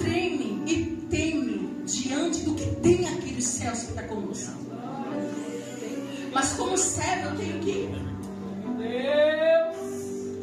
e teme diante do que tem aqui nos céus que está conosco. Mas como servo eu tenho que ir.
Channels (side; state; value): both; identical; correlation 1.00